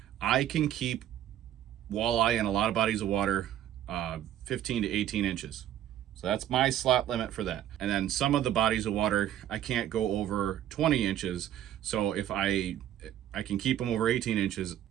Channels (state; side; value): quieter; left; 11.6 dB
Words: I can keep walleye in a lot of bodies of water 15 to 18 inches. So that's my slot limit for that. And then some of the bodies of water, I can't go over 20 inches. So if I can keep them over 18 inches,